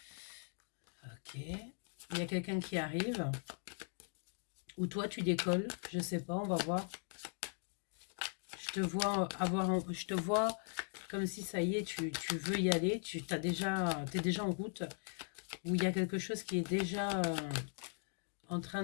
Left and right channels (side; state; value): right; silent; 51 dB below the other